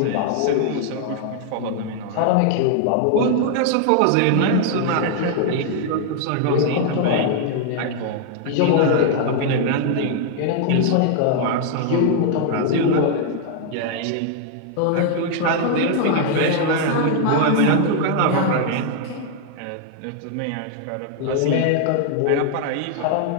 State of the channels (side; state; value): both; different; correlation 0.00